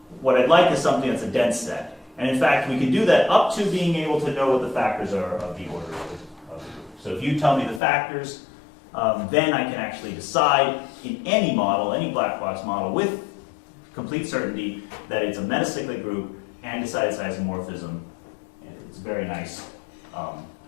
what I'd like is something that's a dense set. And in fact, we can do that up to being able to know what the factors are of the order of the group. So if you tell me the factors, then I can actually decide in any model, any black box model, with complete certainty that it's a metacyclic group and decide its isomorphism. And it's a very nice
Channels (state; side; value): drops out; right; at 7.8 s